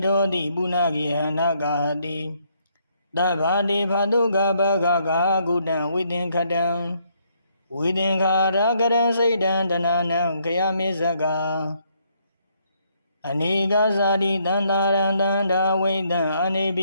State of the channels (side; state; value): both; inverted; correlation -0.71